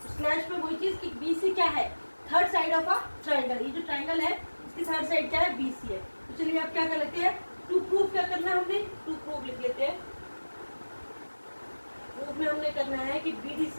स्लैश में वही चीज कि BC क्या है, third side of a triangle. ये जो ट्रायंगल है इसकी थर्ड साइड क्या है, BC है। तो चलिए आप क्या कर लेते हैं, टू प्रूफ क्या करना है हमने, टू प्रूफ लिख लेते हैं। प्रूफ में हमने करना है कि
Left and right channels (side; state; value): both; inverted; correlation -1.00